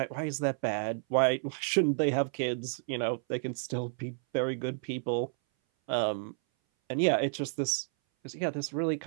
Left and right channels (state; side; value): silent; left; 57 dB below the other